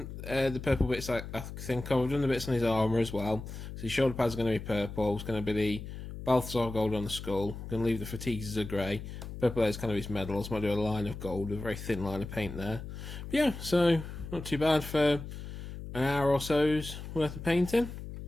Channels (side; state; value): left; noise; hum, 10 dB below the sound